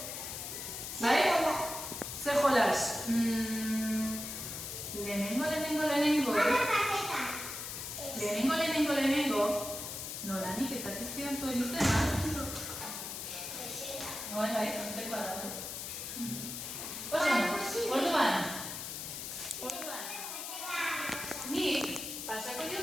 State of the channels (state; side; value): noise; left; hiss, 7 dB below the sound